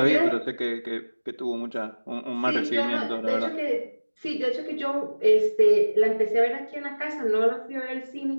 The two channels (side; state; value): both; inverted; correlation -1.00